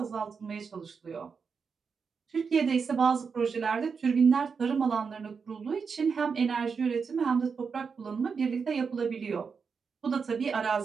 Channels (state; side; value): quieter; left; 5.7 dB